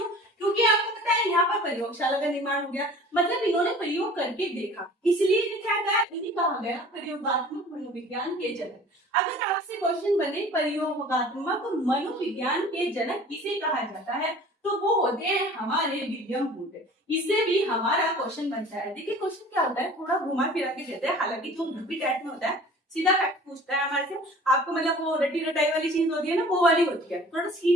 क्योंकि आपको पता है यहाँ पर प्रयोगशाला का निर्माण हो गया, मतलब इन्होंने प्रयोग करके देखा, इसलिए क्या कहा, इन्हें कहा गया प्रयोगात्मक मनोविज्ञान के जनक। अगर आपसे क्वेश्चन बने प्रयोगात्मक मनोविज्ञान के जनक किसे कहा जाता है, तो वो होते हैं हमारे विलियम वुंड। इससे भी हमारा क्वेश्चन बनता है। देखिए क्वेश्चन क्या होता है, थोड़ा घुमा फिरा के देते हैं, हालांकि जो यूपी टाइप में होता है सीधा फैक्ट पूछता है हमारे से, आपको मतलब वो रटी रटाई वाली चीज होती है ना वो वाली होती है। थोड़ा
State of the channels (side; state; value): both; normal; correlation 0.45